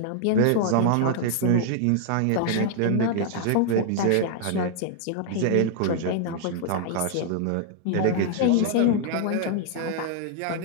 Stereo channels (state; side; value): different; both; correlation 0.00